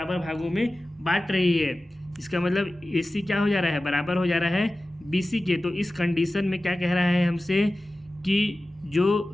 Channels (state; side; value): normal; both; correlation 0.96